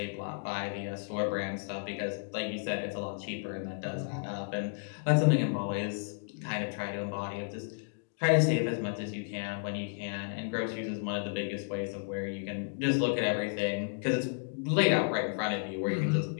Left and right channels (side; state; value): right; silent; digital silence